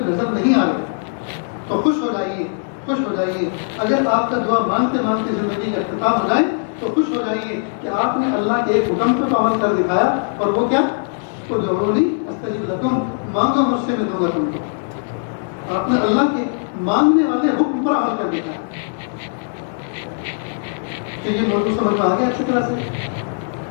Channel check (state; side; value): silent; right; digital silence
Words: نظر نہیں آ رہی تو خوش ہو جائیے۔ اگر آپ کا دعا مانگتے مانگتے زندگی کا اختتام ہو جائے تو خوش ہو جائیے کہ آپ نے اللہ کے ایک حکم پر عمل کر دکھایا، اور وہ کیا؟ ادعونی استجب لکم، مانگو مجھ سے میں دوں گا تم کو۔ آپ نے اللہ کے مانگنے والے حکم پر عمل کر دکھایا۔ کہ یہ موضوع سمجھ میں آ گیا اچھی طرح سے،